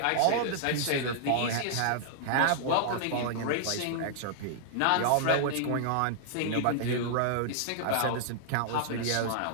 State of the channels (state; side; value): different; both; correlation -0.01